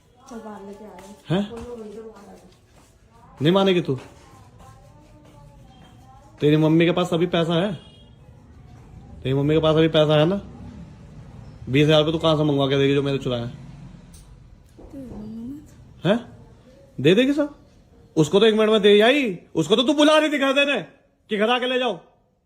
बाहर लेके आए हैं? नहीं मानेगी तू? तेरी मम्मी के पास अभी पैसा है? तेरी मम्मी के पास अभी पैसा है ना? 20,000 रुपये तू कहां से मंगवा के देगी जो मैंने चुराया है? दे देगी सब? उसको तो 1 मिनट में दे आई। उसको तो तू बुला रही थी घर देने कि घर आके ले जाओ।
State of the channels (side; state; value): both; identical; correlation 1.00